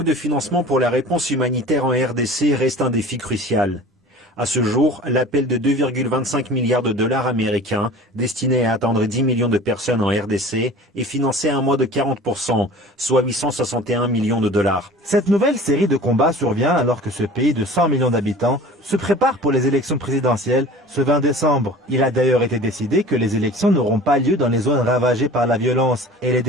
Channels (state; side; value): normal; both; correlation 0.42